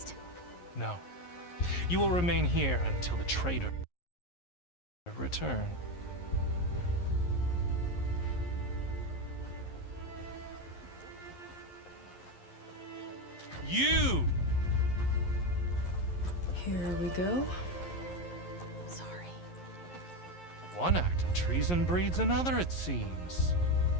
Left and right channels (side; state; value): right; late; 11 ms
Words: No. You will remain here until the traitor return. You! Here we go. Sorry. One act of treason breeds another, it seems.